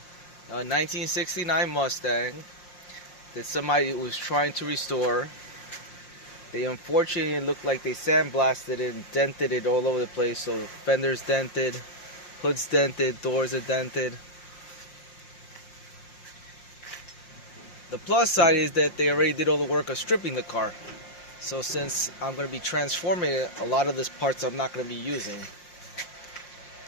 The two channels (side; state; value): right; late; 5.6 ms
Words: a 1969 Mustang that somebody was trying to restore. They unfortunately looked like they sandblasted it and dented it all over the place, so the fender's dented, hood's dented, doors are dented. The plus side is that they already did all the work of stripping the car. So since I'm going to be transforming it, a lot of these parts I'm not going to be using.